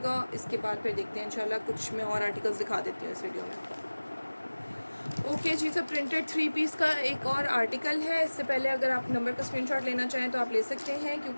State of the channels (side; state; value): both; inverted; correlation -1.00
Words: इसके बाद फिर देखते हैं इंशाल्लाह, कुछ मैं और आर्टिकल्स दिखा देती हूँ इस वीडियो में। ओके जी, तो प्रिंटेड 3 पीस का एक और आर्टिकल है। इससे पहले अगर आप नंबर का स्क्रीनशॉट लेना चाहें तो आप ले सकते हैं,